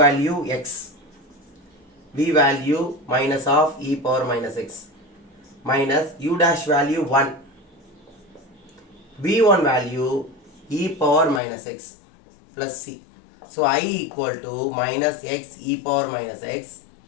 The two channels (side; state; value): right; drops out; at 11.4 s